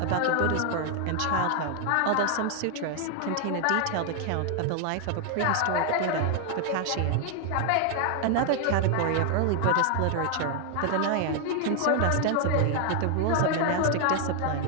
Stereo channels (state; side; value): different; both; correlation 0.00